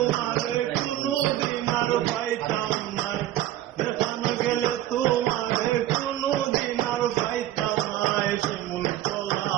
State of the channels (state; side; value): quieter; left; 13.6 dB